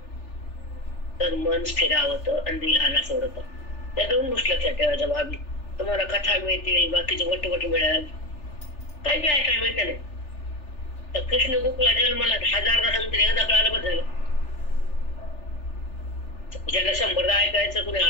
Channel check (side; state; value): right; late; 3.4 ms